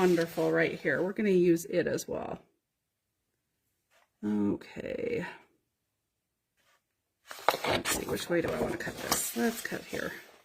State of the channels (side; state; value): both; identical; correlation 1.00